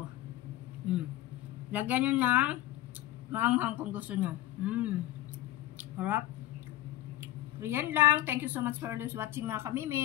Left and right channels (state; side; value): quieter; right; 15.2 dB